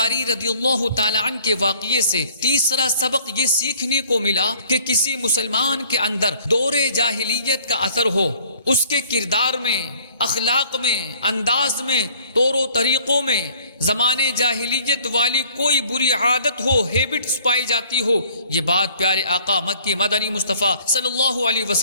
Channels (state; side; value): inverted; both; correlation -0.56